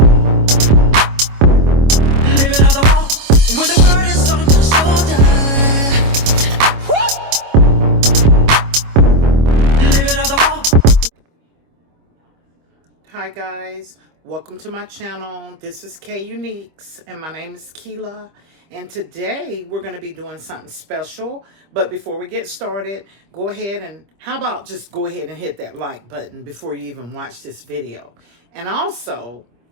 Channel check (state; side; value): late; left; 25 ms